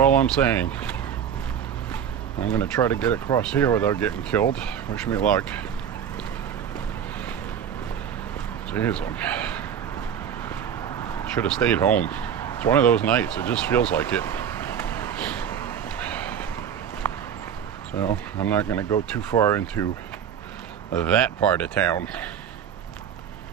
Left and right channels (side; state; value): left; quieter; 8.5 dB